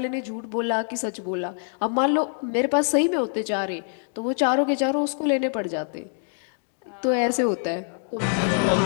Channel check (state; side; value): silent; right; 57 dB below the other